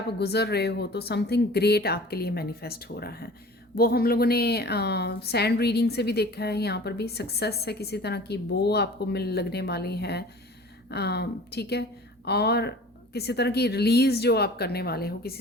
गुजर रहे हो तो समथिंग ग्रेट आपके लिए मैनिफेस्ट हो रहा है। वो हम लोगों ने सैंड रीडिंग से भी देखा है, यहाँ पर भी सक्सेस है किसी तरह की, वो आपको मिल लगने वाली है। ठीक है, और किसी तरह की रिलीज़ जो आप करने वाले हो,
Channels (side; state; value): both; normal; correlation 0.43